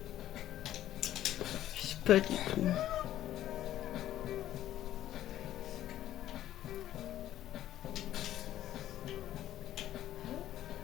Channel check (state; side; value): quieter; right; 12.8 dB